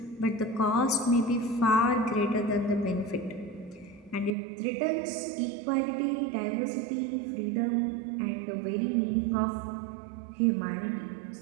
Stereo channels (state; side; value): drops out; left; at 4.4 s